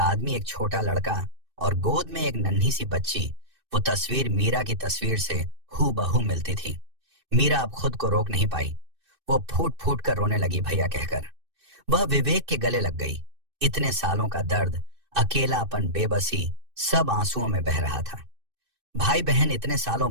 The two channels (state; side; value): late; left; 2.6 ms